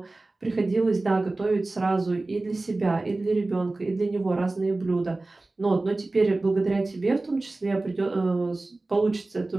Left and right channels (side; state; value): left; quieter; 3.1 dB